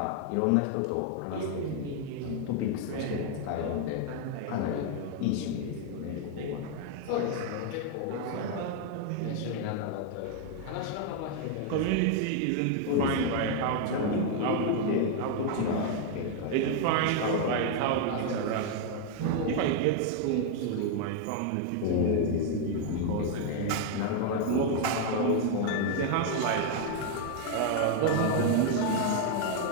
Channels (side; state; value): both; different; correlation 0.00